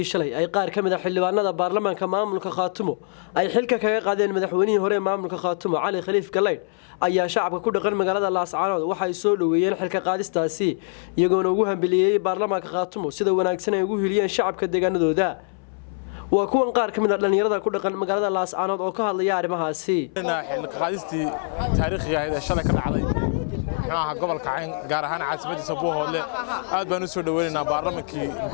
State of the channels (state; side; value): silent; right; 63 dB below the other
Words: shalay ay qaar ka mid ah xildhibaanada baarlamaanka maamulka Khaatumo ay xilka kaga qaadeen madaxweynihii hore maamulka Khaatumo Cali Khaliif Galeyd ayaa shacabka ku dhaqan magaalada Laascaanood waxay soo dhaweeyeen xilka qaadistaasi iyagoona ugu hambaliyay baarlamaanka Khaatumo sida wanaagsan ay ugu hiliyeen shacabka deegaanadooda waa kuwan qaar ka mid ah dhalinyarada ku dhaqan magaalada Laascaanood oo ka hadlaya arrimahaasi xilka qaadistii taariikhiga ah ee shalay ka dhacday gobolka Cayn gaar ahaan caasimadiisa Buuhoodle aad baan u soo dhaweynaynaa baarlamaankii